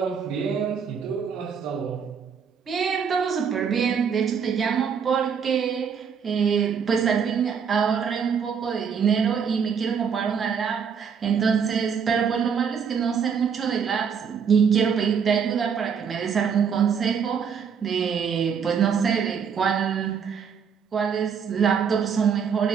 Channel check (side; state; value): left; quieter; 6.8 dB